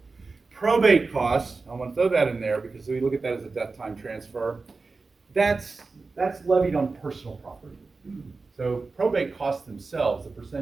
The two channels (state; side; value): quieter; left; 4.0 dB